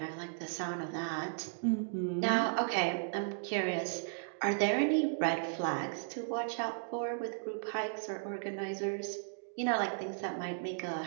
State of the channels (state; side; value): silent; left; digital silence